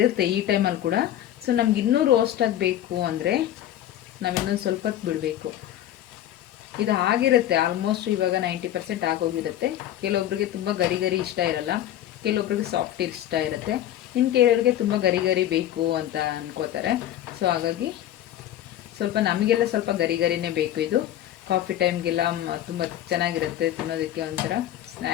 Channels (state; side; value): quieter; right; 12.2 dB